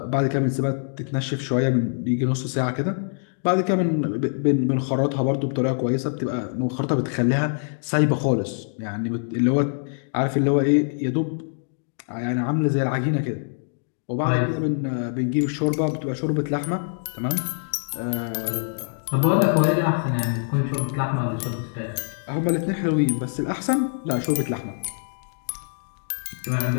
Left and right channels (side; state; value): right; silent; digital silence